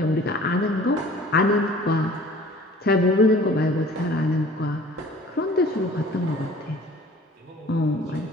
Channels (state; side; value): normal; both; correlation 0.49